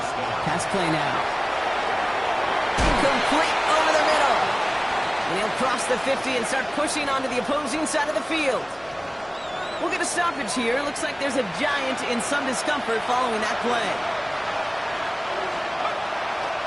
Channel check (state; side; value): identical; both; correlation 1.00